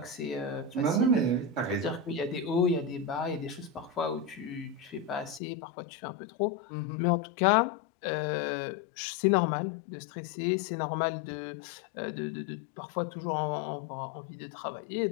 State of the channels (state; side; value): drops out; right; at 5.4 s